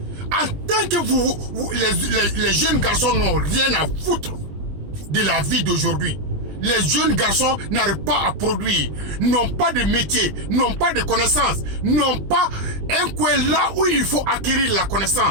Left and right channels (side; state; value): left; late; 20 ms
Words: En tant que les jeunes garçons n'ont rien à foutre de la vie d'aujourd'hui. Les jeunes garçons n'arrivent pas à produire, n'ont pas de métier, n'ont pas de connaissances, n'ont pas un coin là où il faut acquérir la